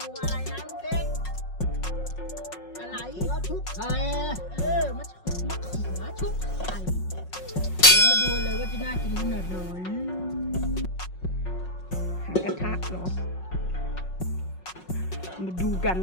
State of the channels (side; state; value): right; late; 5.5 ms